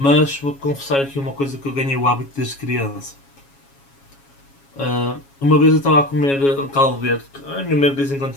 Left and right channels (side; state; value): right; late; 7.2 ms